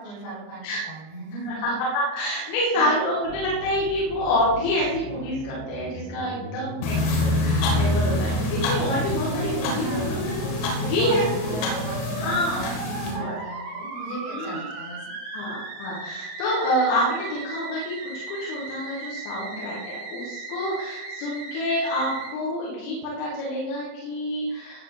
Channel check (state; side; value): late; right; 38 ms